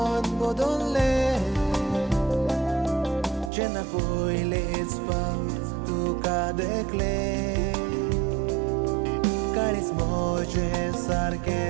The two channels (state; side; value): drops out; left; at 3.5 s